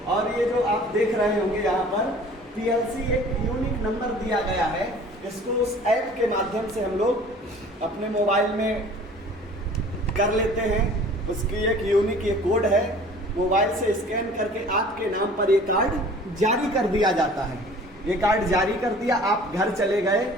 और ये जो आप देख रहे होंगे यहाँ पर PLC एक यूनिक नंबर दिया गया है। इसको उस ऐप के माध्यम से हम लोग अपने मोबाइल में कर लेते हैं। उसकी एक यूनिक ये कोड है, मोबाइल से स्कैन करके आपके नाम पर ये कार्ड जारी कर दिया जाता है। ये कार्ड जारी कर दिया, आप घर चले गए।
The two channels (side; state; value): both; normal; correlation 0.48